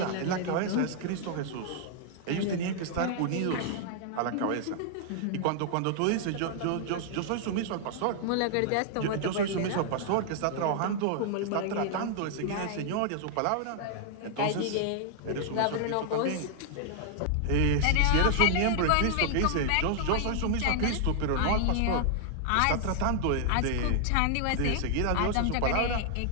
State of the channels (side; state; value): both; different; correlation 0.00